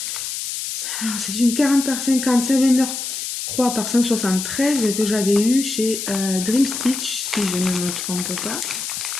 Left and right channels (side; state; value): left; noise; hiss, 5 dB below the sound